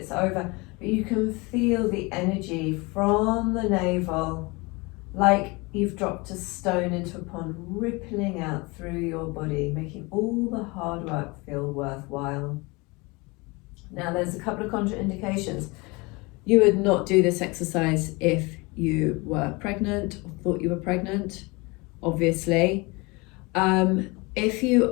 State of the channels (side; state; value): right; quieter; 25.9 dB